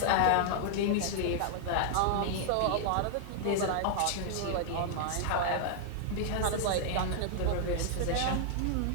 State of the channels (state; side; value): different; both; correlation 0.00